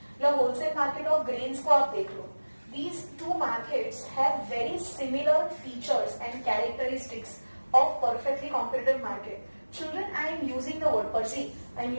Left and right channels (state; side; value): inverted; both; correlation -1.00